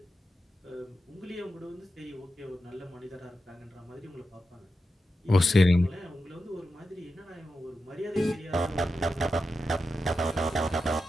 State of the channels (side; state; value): both; normal; correlation 0.89